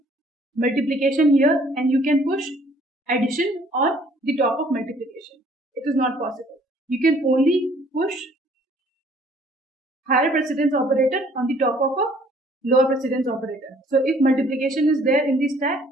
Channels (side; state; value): both; normal; correlation 0.59